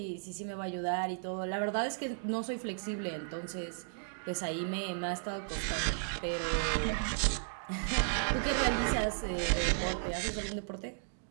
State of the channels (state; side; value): silent; left; digital silence